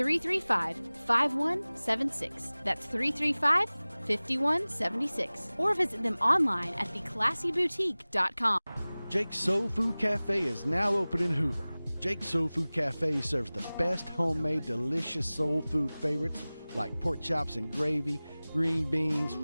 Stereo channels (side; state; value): both; inverted; correlation -0.99